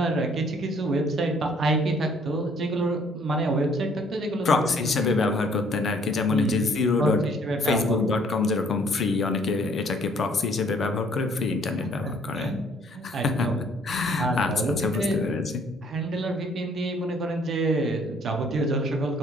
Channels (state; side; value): normal; both; correlation 0.61